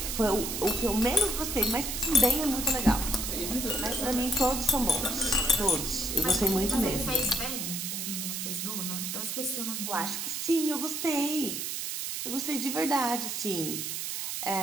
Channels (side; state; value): right; noise; hiss, 3 dB below the sound